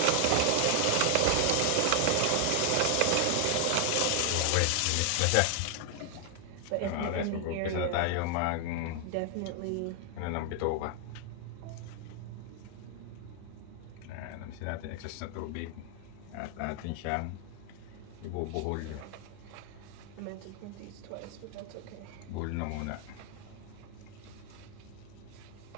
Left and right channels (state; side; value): different; both; correlation 0.00